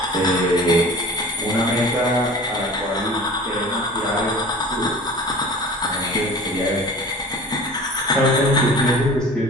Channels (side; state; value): both; normal; correlation 0.41